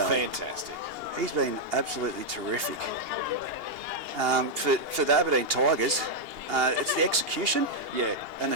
Fantastic. He's been absolutely terrific. For the Aberdeen Tigers, it's the execution and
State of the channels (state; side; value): late; left; 2.8 ms